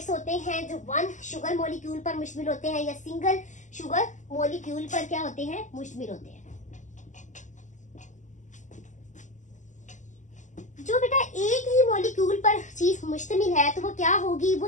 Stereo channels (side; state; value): right; late; 0.35 ms